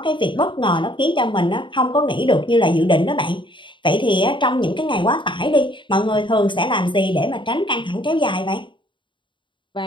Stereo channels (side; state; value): right; late; 0.23 ms